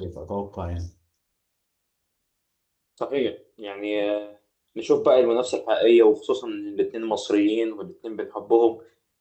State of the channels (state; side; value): identical; both; correlation 1.00